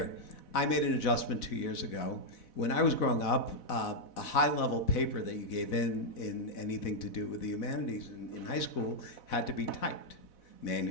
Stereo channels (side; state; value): right; late; 4.1 ms